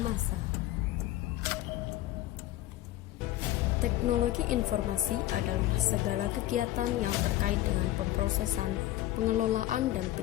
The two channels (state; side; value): quieter; right; 14.9 dB